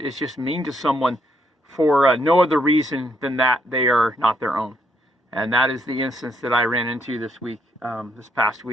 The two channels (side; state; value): both; normal; correlation 0.73